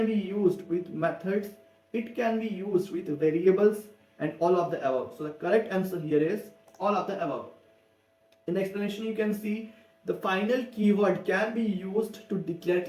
be used with methods, it can be used with variables, and all of the above. So the correct answer here is all of the above. In the explanation you can see the final keyword can be used to declare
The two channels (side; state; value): both; identical; correlation 1.00